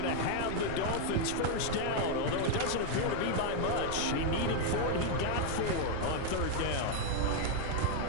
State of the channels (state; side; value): different; both; correlation 0.00